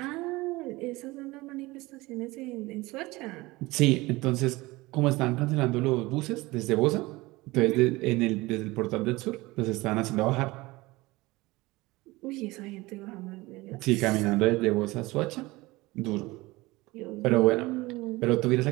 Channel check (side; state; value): left; quieter; 21.0 dB